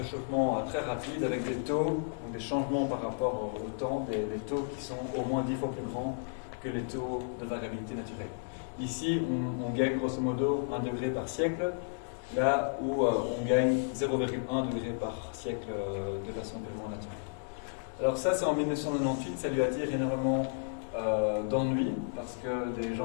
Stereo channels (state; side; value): silent; right; digital silence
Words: très rapide, avec des taux, donc des changements par rapport au temps, des taux qui sont au moins 10 fois plus grands que les taux de variabilité naturelle. Ici, on gagne grosso modo 1 degré par siècle, là où on gagne 0,1 degré par siècle de façon purement naturelle. Alors ça, c'est en 1998, ça lui attire énormément d'ennui, parce que des